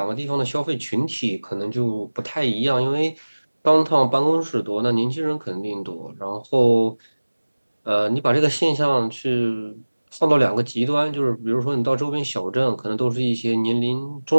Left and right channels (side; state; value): both; inverted; correlation -1.00